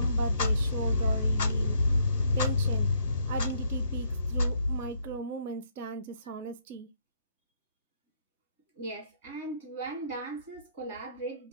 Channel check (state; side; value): inverted; both; correlation -0.71